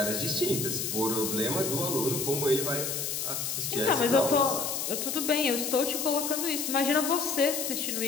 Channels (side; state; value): left; noise; hiss, 2 dB below the sound